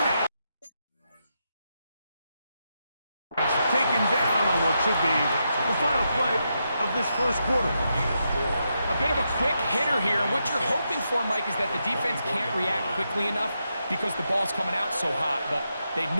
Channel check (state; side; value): inverted; both; correlation -0.84